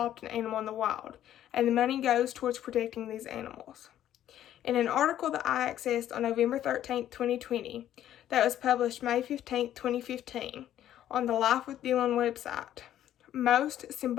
an animal in the wild, and the money goes towards protecting these animals. In an article that I accessed on November 13, 2020, that was published May 15, 2015, on the Life with Dylan website, most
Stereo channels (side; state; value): right; quieter; 11.7 dB